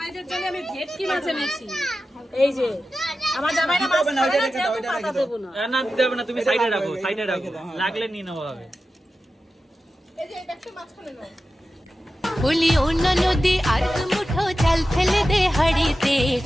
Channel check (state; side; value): normal; both; correlation 0.93